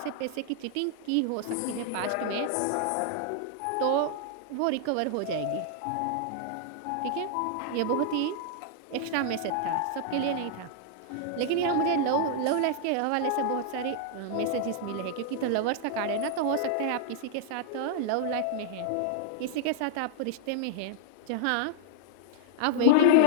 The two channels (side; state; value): both; different; correlation -0.01